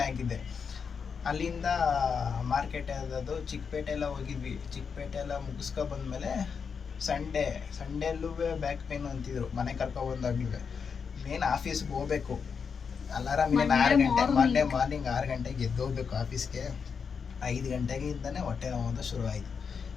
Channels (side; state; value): right; quieter; 6.0 dB